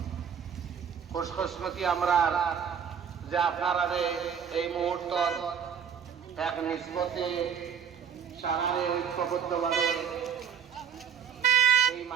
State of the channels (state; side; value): quieter; left; 7.7 dB